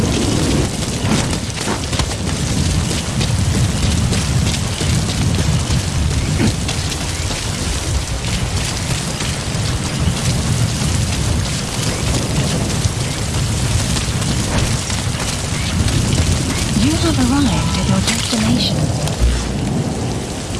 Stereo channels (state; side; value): identical; both; correlation 1.00